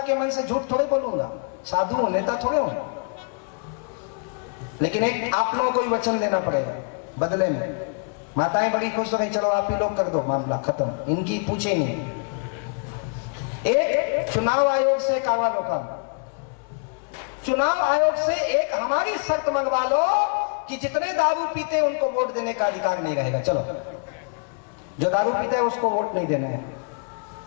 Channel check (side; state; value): right; quieter; 37.6 dB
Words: मन से झूठ थोड़े बोलूंगा, साधु हूं, नेता थोड़े हूं। लेकिन एक आप लोगों को ही वचन देना पड़ेगा बदले में। माताएं बड़ी खुश हो गई, चलो आप ही लोग कर दो, मामला खत्म, इनकी पूछे नहीं। एक चुनाव आयोग से कावा लो काम, चुनाव आयोग से एक हमारी शर्त मंगवा लो कि जितने दारू पीते हैं उनको वोट देने का अधिकार नहीं रहेगा। चलो, जो दारू पीता है उसको वोट नहीं देने हैं,